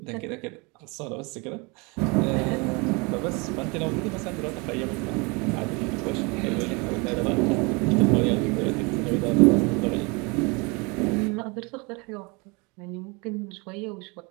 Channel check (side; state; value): left; quieter; 28.8 dB